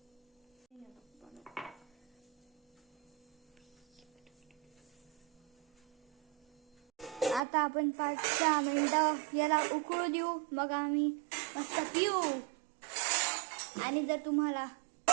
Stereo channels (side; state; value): left; drops out; at 7.4 s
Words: आता आपण 5-6 मिनिटं याला उकळू देऊ. मग आम्ही मस्त पिऊ. आणि जर तुम्हाला